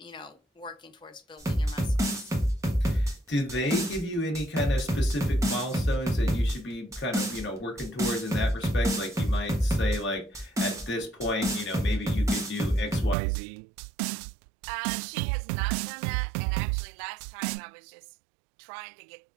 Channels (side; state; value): left; drops out; at 13.2 s